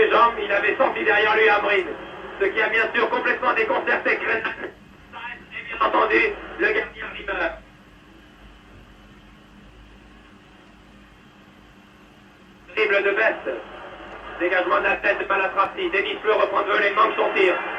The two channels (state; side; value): identical; both; correlation 1.00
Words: jambes. Il avait senti derrière lui Amrin, ce qui a bien sûr complètement déconcerté Krenan. Et bien entendu, le gardien Rimmer. Dribble de Best. Dégagement de la tête de Malatrazi. Denis Fleu reprend de voler, manque son tir.